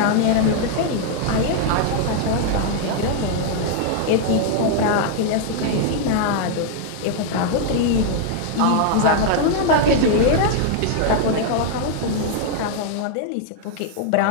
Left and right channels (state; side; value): different; both; correlation 0.00